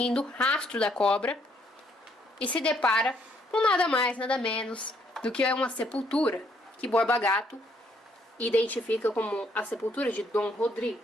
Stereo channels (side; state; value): both; normal; correlation 0.69